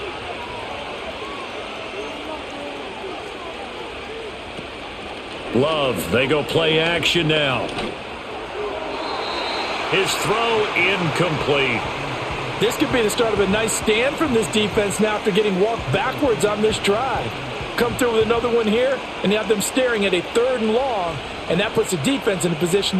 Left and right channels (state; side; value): identical; both; correlation 1.00